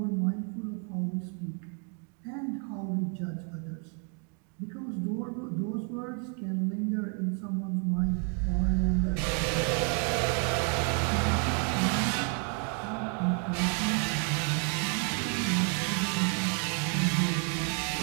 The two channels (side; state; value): left; quieter; 39.6 dB